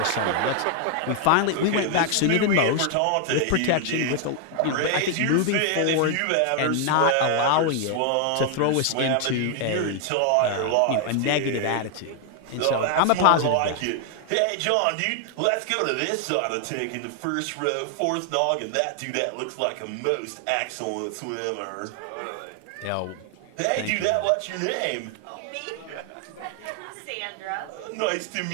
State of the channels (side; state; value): both; different; correlation 0.00